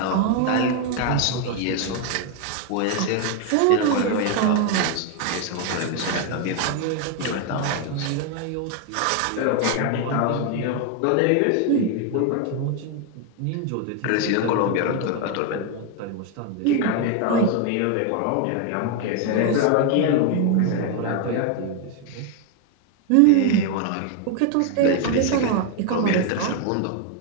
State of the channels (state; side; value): different; both; correlation 0.01